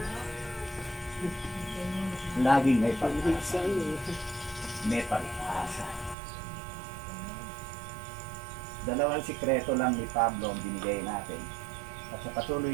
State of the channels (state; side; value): drops out; left; at 6.2 s